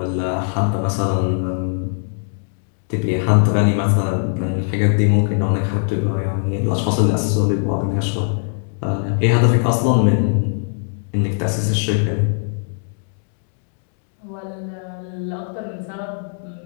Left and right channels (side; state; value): right; silent; 60 dB below the other